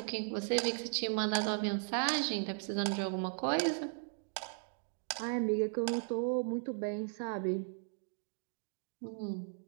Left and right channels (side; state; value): left; silent; digital silence